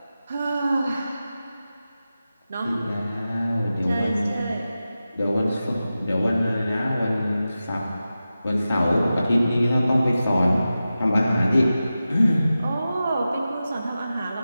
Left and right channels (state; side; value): inverted; both; correlation -0.93